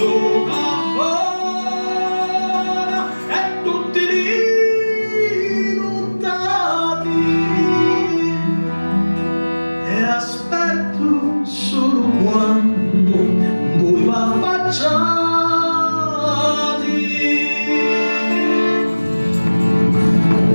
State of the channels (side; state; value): both; inverted; correlation -1.00